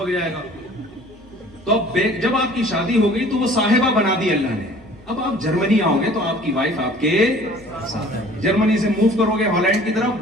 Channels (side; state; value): both; normal; correlation 0.50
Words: جائے گا. تو اب جب آپ کی شادی ہو گئی تو وہ صاحبہ بنا دی اللہ نے. اب آپ جرمنی آؤ گے تو آپ کی وائف آپ کے ساتھ. جرمنی سے موو کرو گے ہالینڈ کی طرف،